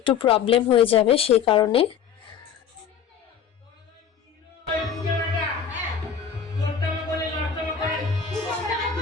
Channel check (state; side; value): quieter; right; 7.5 dB